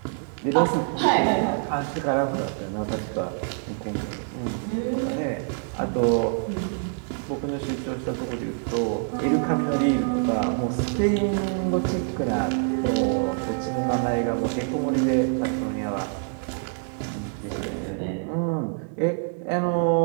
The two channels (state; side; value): silent; left; 60 dB below the other